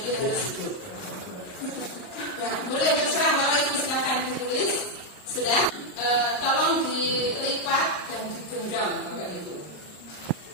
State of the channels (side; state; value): right; late; 39 ms